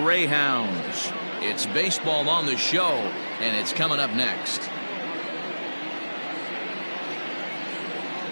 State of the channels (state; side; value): inverted; both; correlation -1.00